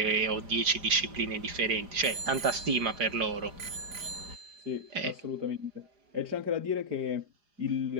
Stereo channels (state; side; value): late; left; 4.9 ms